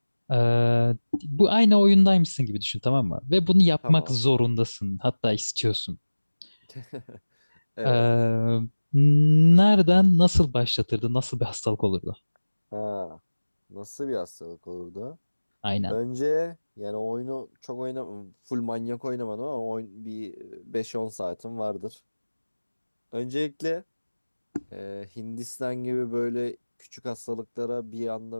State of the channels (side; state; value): both; inverted; correlation -1.00